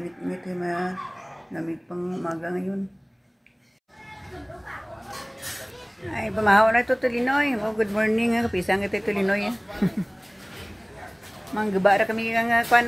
ay lamig pang umaga ngayon. Ay, pamahaw na ito Tulinoy. Oh, good morning. Kapisang ito Tulinoy. Manggaba na kami ang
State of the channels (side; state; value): both; identical; correlation 1.00